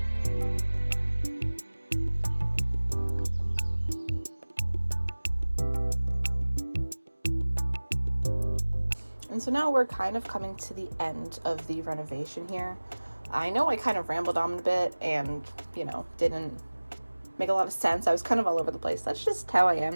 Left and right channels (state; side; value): inverted; both; correlation -1.00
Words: And so now we're kind of coming to the end of the renovation here. I know I kind of rambled on a bit and, didn't make a lot of sense. I was kind of all over the place. That's just how I am.